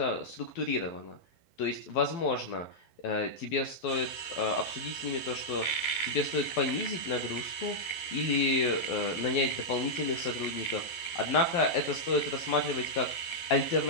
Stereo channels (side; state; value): right; late; 11 ms